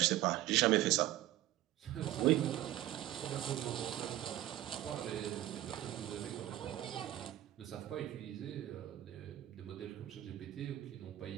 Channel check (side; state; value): left; quieter; 14.2 dB